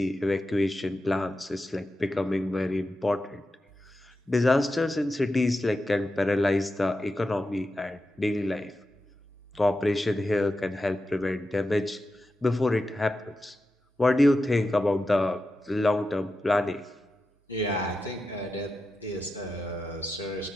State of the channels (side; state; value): both; normal; correlation 0.90